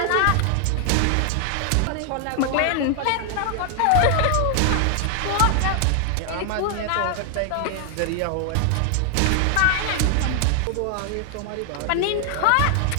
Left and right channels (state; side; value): different; both; correlation 0.00